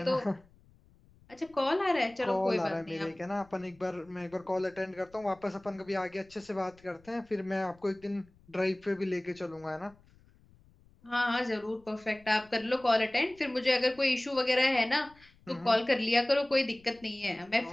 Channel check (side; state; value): left; noise; rumble, 28 dB below the sound